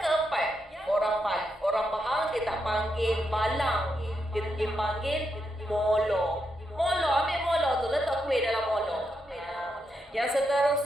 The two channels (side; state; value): both; normal; correlation 0.83